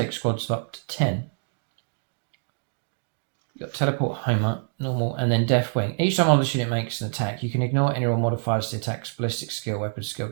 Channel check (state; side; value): silent; left; digital silence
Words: squads of up to 10. You've got Teleport, Homer, normal, and then Deathwing. Each time one of this unit makes an attack, you can ignore any roll modifiers to the attack's ballistic skill, weapon skill